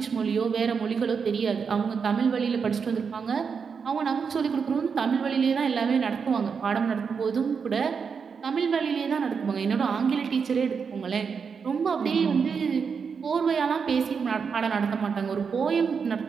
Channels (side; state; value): left; quieter; 6.0 dB